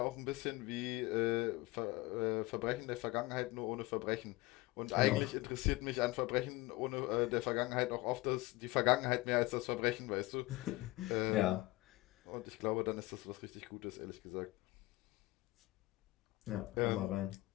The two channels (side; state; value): right; quieter; 20.4 dB